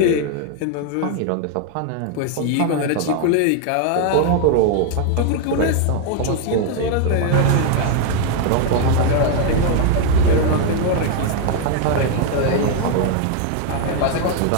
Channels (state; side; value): different; both; correlation 0.00